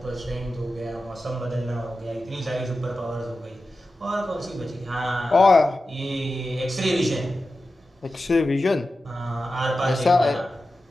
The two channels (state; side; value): normal; both; correlation 0.93